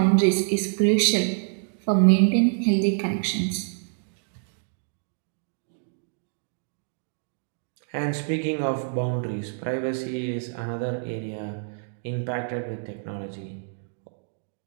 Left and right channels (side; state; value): left; silent; digital silence